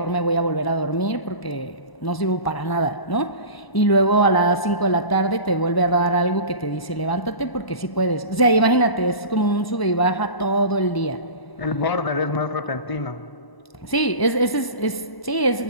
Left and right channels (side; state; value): right; late; 1.0 ms